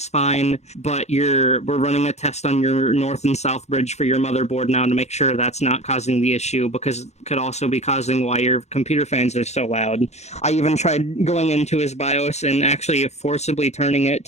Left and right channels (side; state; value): right; late; 0.32 ms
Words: fine, but we're running a test on your north and south bridge for your motherboard now to make sure that's not causing the issue, because it could also be causing why your computer fans are so loud. I even tried going into his BIOS and actually forcibly turning it